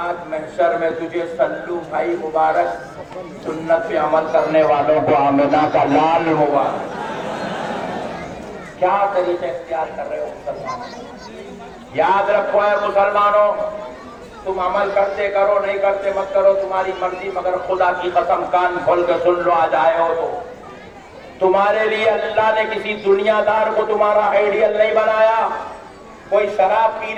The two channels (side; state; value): both; identical; correlation 1.00